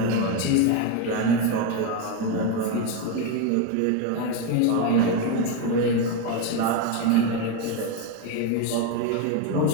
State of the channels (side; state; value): both; different; correlation 0.03